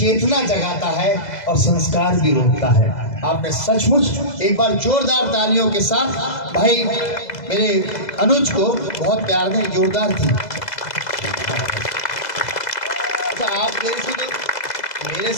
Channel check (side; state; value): right; late; 2.0 ms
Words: जगाता है और संस्कार भी रोकता है। आपने सचमुच एक बार जोरदार तालियों के साथ भाई मेरे अनुज को बहुत प्यार दें, जोरदार थी। अच्छा, आप मेरे